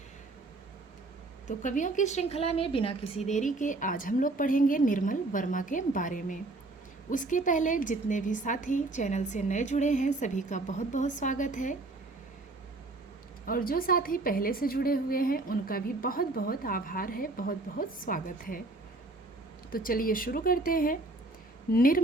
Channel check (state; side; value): quieter; left; 3.0 dB